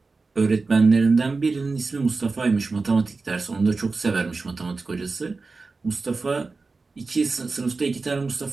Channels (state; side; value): quieter; left; 4.0 dB